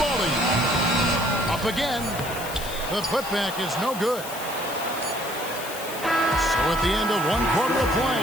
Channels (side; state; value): left; noise; hiss, 11 dB below the sound